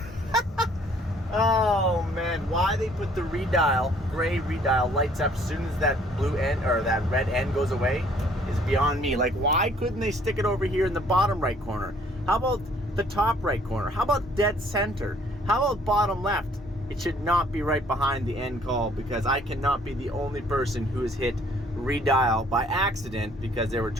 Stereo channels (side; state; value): both; normal; correlation 0.60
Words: Oh man, why they put the redial, gray redial, lights up as soon as that blue end or that red end goes away is beyond me. Like, why couldn't they stick it over here in the bottom right corner? How about the top right corner? How about dead center? How about bottom left? It should not be right behind the end call, because I cannot be the only person who has hit redial by accident because they were